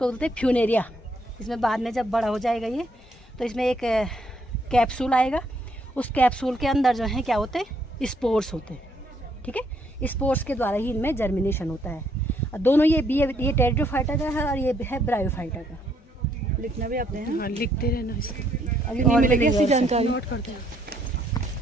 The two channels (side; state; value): both; normal; correlation 0.70